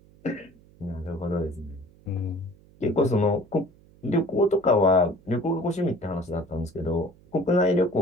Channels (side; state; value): right; noise; hum, 27 dB below the sound